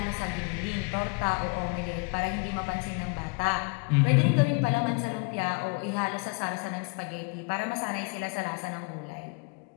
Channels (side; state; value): right; quieter; 32.3 dB